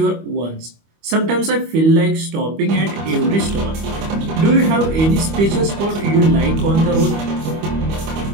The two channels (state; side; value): late; left; 25 ms